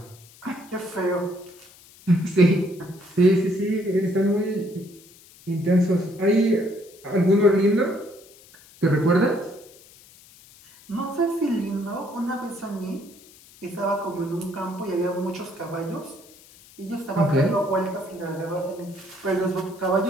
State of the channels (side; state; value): left; noise; hiss, 24 dB below the sound